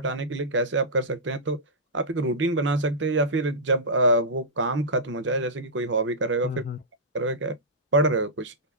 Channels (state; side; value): normal; both; correlation -0.14